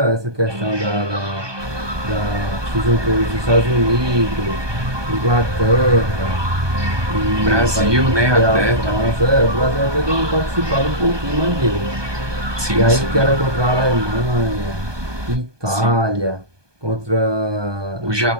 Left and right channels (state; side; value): late; left; 1.2 ms